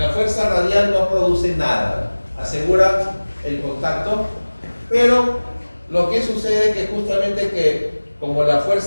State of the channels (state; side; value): inverted; both; correlation -1.00